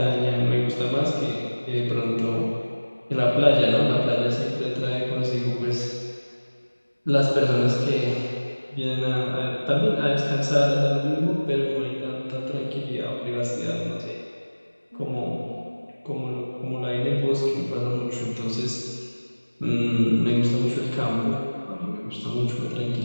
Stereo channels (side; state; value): both; inverted; correlation -1.00